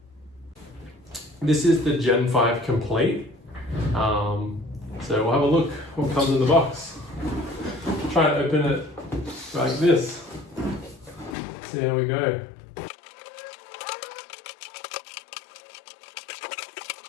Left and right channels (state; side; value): drops out; right; at 11.4 s